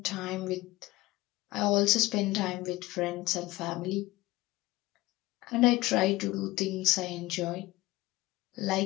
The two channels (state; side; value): quieter; right; 19.2 dB